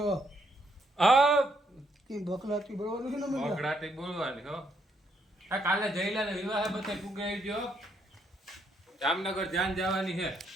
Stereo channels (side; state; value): both; normal; correlation 0.74